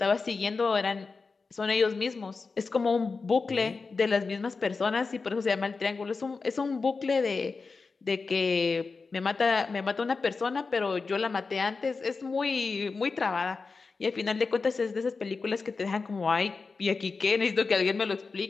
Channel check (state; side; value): quieter; right; 4.4 dB